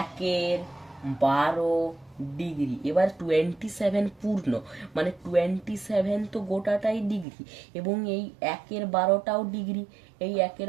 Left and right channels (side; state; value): left; drops out; at 7.2 s